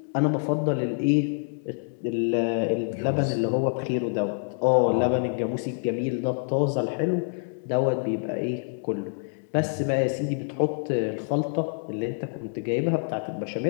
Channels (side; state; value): right; silent; digital silence